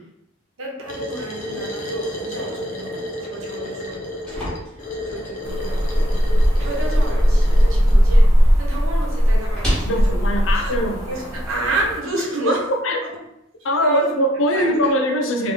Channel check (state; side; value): normal; both; correlation 0.73